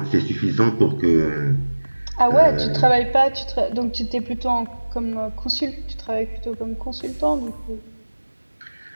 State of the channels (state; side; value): inverted; both; correlation -1.00